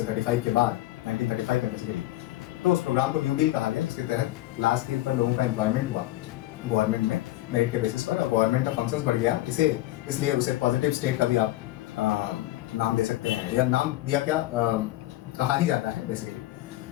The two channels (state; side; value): quieter; right; 16.3 dB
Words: 35 के बाद, 1935 में बेसिकली, तो उस प्रोग्राम को न्यू डील कहा गया, जिसके तहत लार्ज स्केल पर लोगों का एम्प्लॉयमेंट हुआ गवर्नमेंट में मेरिट के बेसिस पर, और गवर्नमेंट का फंक्शंस बढ़ गया। इसलिए उसे पॉजिटिव स्टेट का भी आप नाम दे सकते हैं, या नाम दिया क्या कहा ही जाता है बेसिकली।